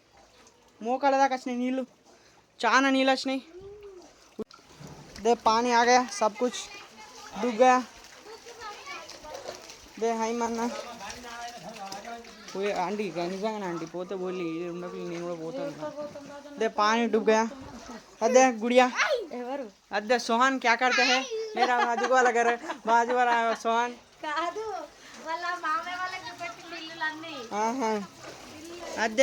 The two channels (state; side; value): identical; both; correlation 1.00